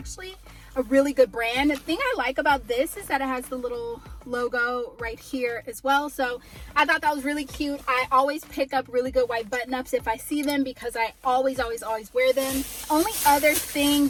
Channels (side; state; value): both; identical; correlation 1.00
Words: a really good brand. The thing I like about this is that it has the little logo right here as well. So I thought that was really cute. I always pick up really good white button ups if I see them because I always wear them. Only other thing